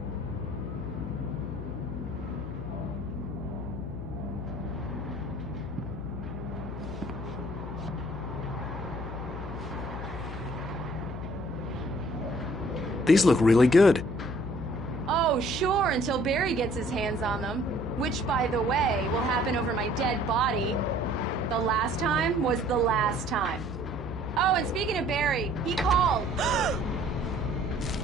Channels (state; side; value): noise; left; hum, 8 dB below the sound